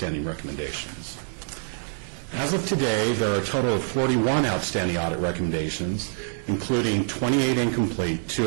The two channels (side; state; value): left; silent; digital silence